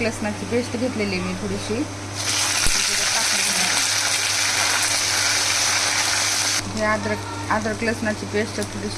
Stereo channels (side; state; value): both; identical; correlation 1.00